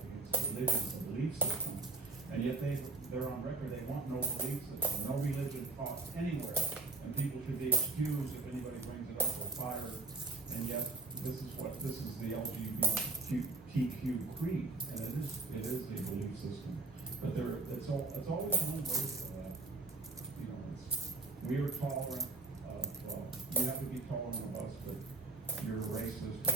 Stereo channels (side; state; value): left; quieter; 3.2 dB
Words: it's a religion, it's a belief system, and yet they're on record, they want no belief system, no religion taught anywhere, and people should be excused if anybody brings it up or fired, and yet this is the LGBTQ creed, and it is a belief system, but it's always one way for that. You know, we are tolerant of, you have to be tolerant of us, but you're racist or